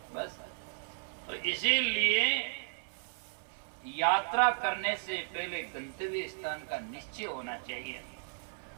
बस। तो इसीलिए यात्रा करने से पहले गंतव्य स्थान का निश्चय होना चाहिए।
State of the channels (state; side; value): silent; left; 55 dB below the other